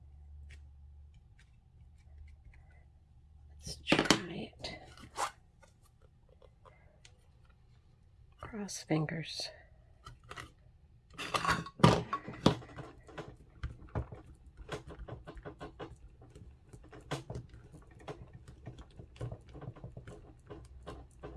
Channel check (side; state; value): both; identical; correlation 1.00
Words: Let's try it. Cross fingers.